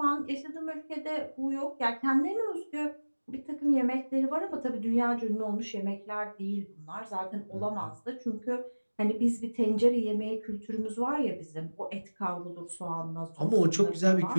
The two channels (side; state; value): both; inverted; correlation -1.00